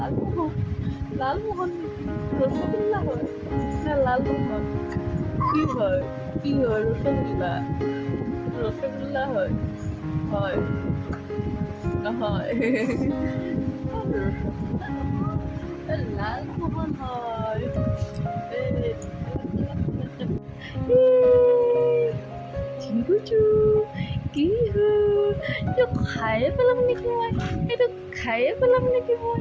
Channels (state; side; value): identical; both; correlation 1.00